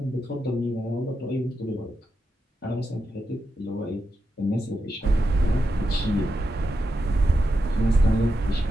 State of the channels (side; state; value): both; normal; correlation 0.87